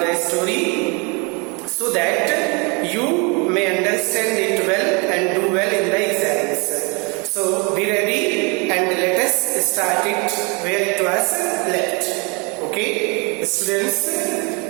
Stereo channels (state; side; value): quieter; left; 30.7 dB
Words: the story, so that you may understand it well and do well in the exams. So be ready and let us start it where it was left. Okay, students,